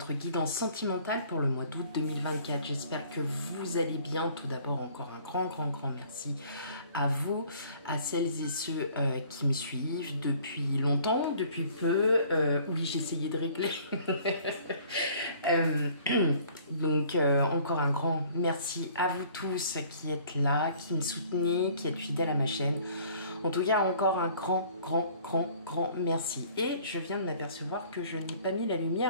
guidance sentimentale pour le mois d'août 2024. J'espère que vous allez bien. Tout d'abord, encore un grand merci à vous, à celles et ceux qui me suivent depuis longtemps, depuis peu. Oui, j'ai essayé de régler. Donc, encore un grand merci à vous tous qui êtes là, qui me soutenez, qui êtes fidèles à ma chaîne. En tout cas, encore un grand merci. Et je viens de m'apercevoir que je n'ai pas mis la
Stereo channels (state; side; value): inverted; both; correlation -0.54